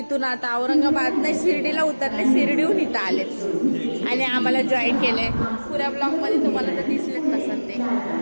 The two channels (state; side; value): inverted; both; correlation -1.00